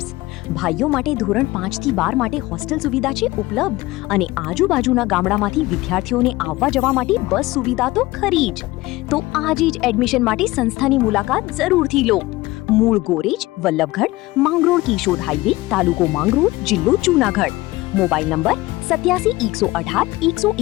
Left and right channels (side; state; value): right; quieter; 19.6 dB